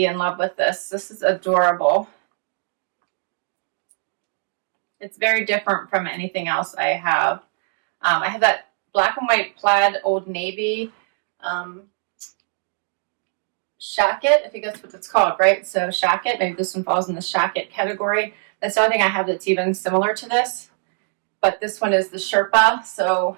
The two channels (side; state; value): left; silent; 56 dB below the other